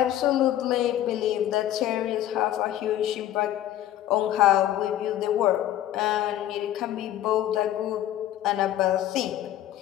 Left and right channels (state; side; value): quieter; right; 12.5 dB